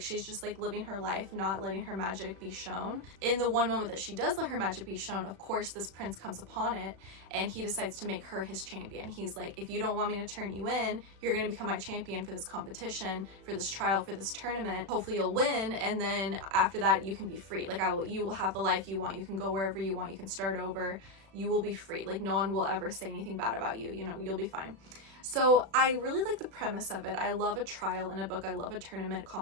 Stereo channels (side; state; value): left; late; 36 ms